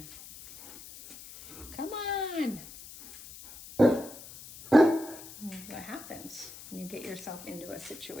Come on. What happens when you get yourself into a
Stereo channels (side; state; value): left; noise; hiss, 16 dB below the sound